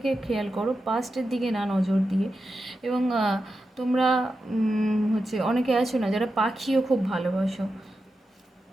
খেয়াল করো, পাস্টের দিকে না নজর দিয়ে। এবং তোমরা হচ্ছে অনেকে আছো না যারা পাখিও খুব ভালোবাসো।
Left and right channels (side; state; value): both; normal; correlation 0.89